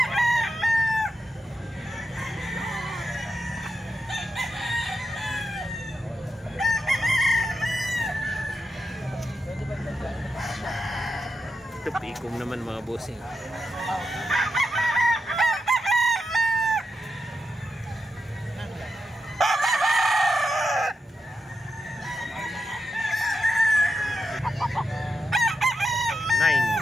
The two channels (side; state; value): both; normal; correlation 0.87